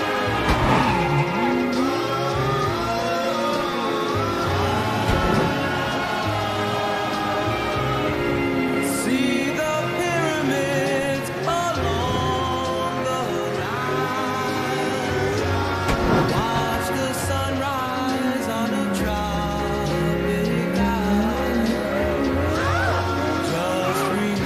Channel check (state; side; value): identical; both; correlation 1.00